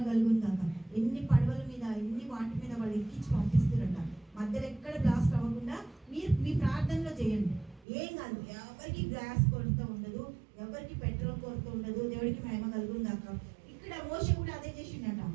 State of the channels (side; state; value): left; drops out; at 7.9 s